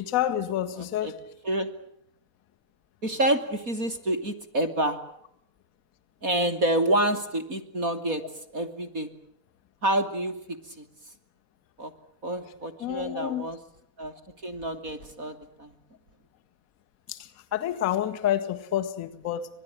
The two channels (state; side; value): late; left; 4.1 ms